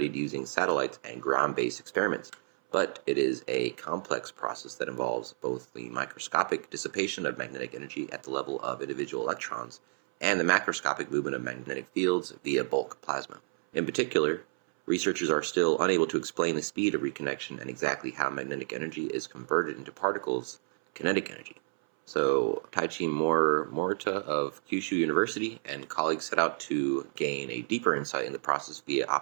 using satellites and ground-based experiments, but it is a complex process that involves both the microscopic dissipation of magnetic energy at the level of individual electrons and the macroscopic movement of magnetic fields via bulk plasma. In particular, researchers are still unable to explain the speed of reconnection and exactly how magnetic energy is converted into particles, kinetic energy. So, Taichi Morita of Kyushu University and colleagues set out to gain a deeper insight in the process via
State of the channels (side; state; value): left; silent; 57 dB below the other